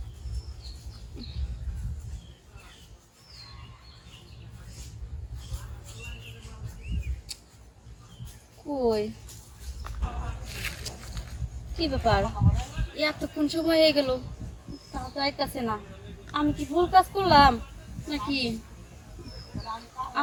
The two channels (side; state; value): both; identical; correlation 1.00